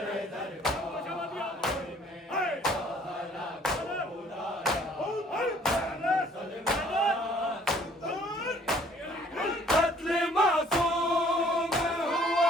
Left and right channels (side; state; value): both; normal; correlation 0.58